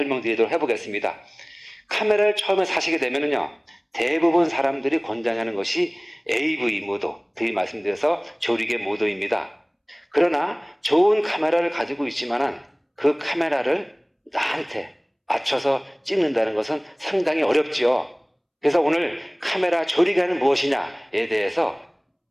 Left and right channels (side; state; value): both; identical; correlation 1.00